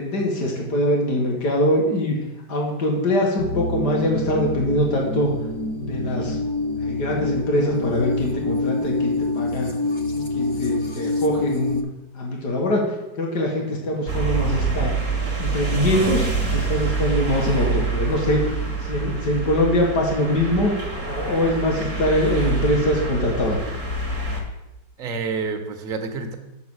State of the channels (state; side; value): late; right; 4.3 ms